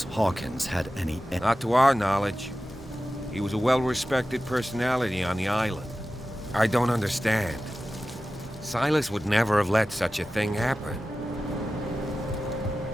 Hawkins had any... Not to our knowledge. He was a well-respected personality on the island. I don't understand. Silas would never have let such a thing happen.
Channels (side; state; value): both; normal; correlation 0.94